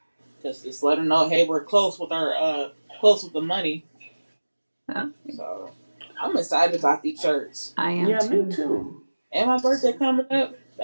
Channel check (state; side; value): inverted; both; correlation -1.00